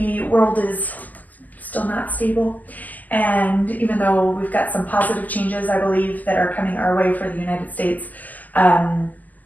world is still not stable. And even though we've got some positive changes, I believe, that are coming our way for the United States,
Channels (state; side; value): late; right; 0.081 ms